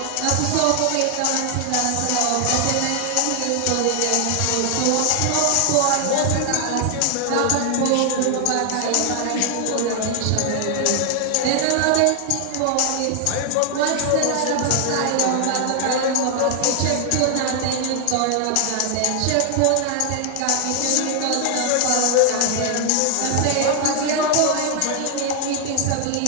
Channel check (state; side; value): different; both; correlation 0.00